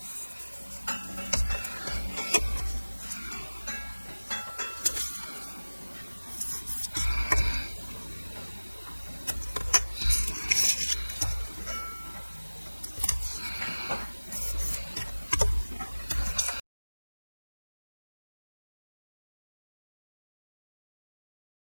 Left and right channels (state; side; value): inverted; both; correlation -1.00